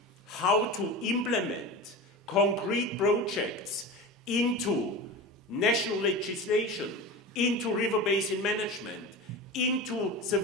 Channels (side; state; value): both; normal; correlation 0.29